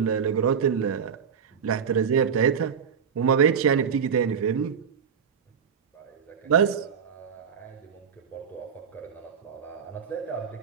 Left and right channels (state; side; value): quieter; left; 7.1 dB